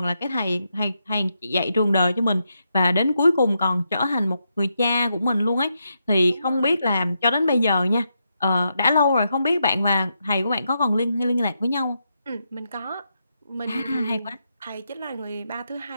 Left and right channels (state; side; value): inverted; both; correlation -0.83